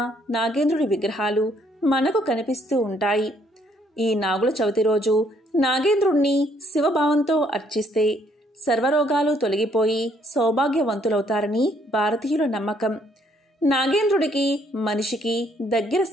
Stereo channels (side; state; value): both; normal; correlation 0.67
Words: నాగేంద్రుడి విగ్రహాలు మనకు కనిపిస్తూ ఉంటాయి. ఈ నాగుల చవితి రోజు నాగేంద్రుణ్ణి శివభావంతో అర్చిస్తే సర్వరోగాలు తొలగిపోయి సౌభాగ్యవంతులవుతారని భారతీయుల నమ్మకం. నాగేంద్రుడికి మనిషికి దగ్గర